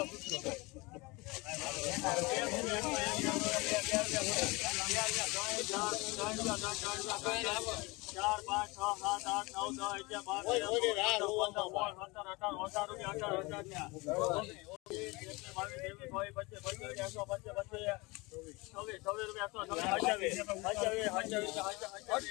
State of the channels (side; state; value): right; quieter; 24.7 dB